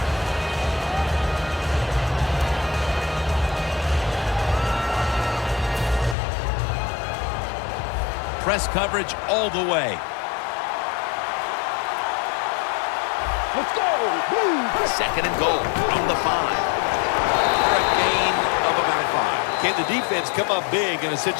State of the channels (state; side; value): drops out; right; at 6.2 s